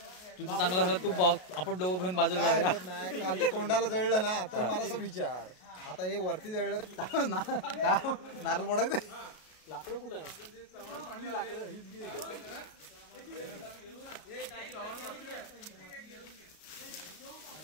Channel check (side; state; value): right; late; 33 ms